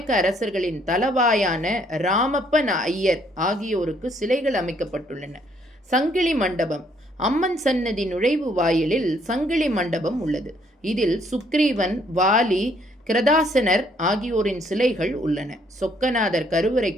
அரசர்களின் தலவாயான ராமப்ப ஐயர் ஆகியோருக்கு சிலைகள் அமைக்கப்பட்டுள்ளன. சங்கிலி மண்டபம். அம்மன் சன்னதி நுழைவு வாயிலில் சங்கிலி மண்டபம் உள்ளது. இதில் சுக்ரீவன், வாலி, கிரதாசனர் ஆகியோரின் சிலைகள் உள்ளன. சொக்கநாதர்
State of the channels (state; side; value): normal; both; correlation 0.67